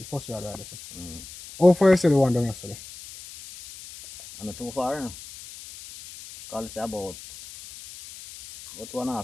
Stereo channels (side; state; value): left; noise; hiss, 16 dB below the sound